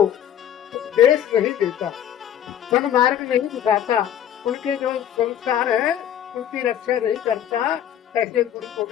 नहीं देता, सन्मार्ग नहीं दिखाता, उनके जो संस्कार है उनकी रक्षा नहीं करता, ऐसे गुरु को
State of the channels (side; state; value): right; quieter; 10.3 dB